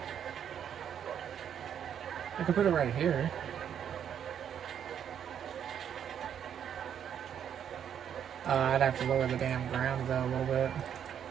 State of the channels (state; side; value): quieter; left; 8.8 dB